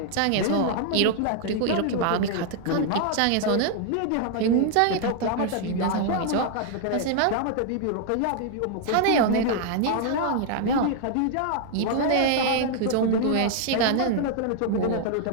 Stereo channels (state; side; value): different; both; correlation 0.00